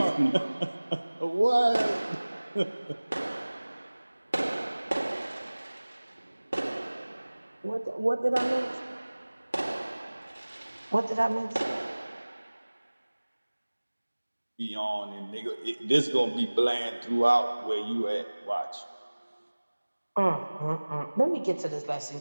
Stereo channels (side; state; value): both; inverted; correlation -1.00